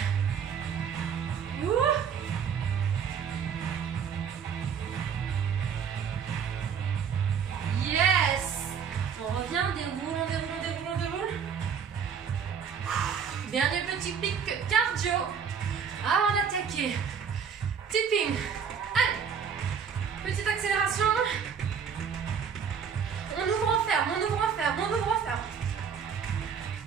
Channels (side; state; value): left; quieter; 7.1 dB